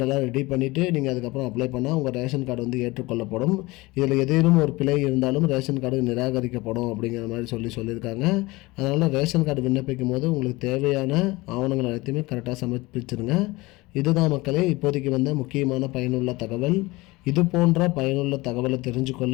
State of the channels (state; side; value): quieter; right; 21.7 dB